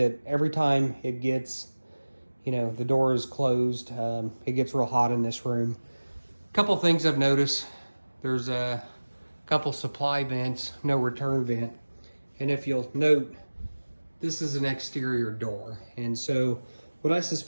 every time it gets, the door is closed, it gets real hot in this room. A couple things I've noticed: there's a couple supply vents, no return vent, and if you'll note, this is an exterior door, and so what I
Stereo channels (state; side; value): inverted; both; correlation -1.00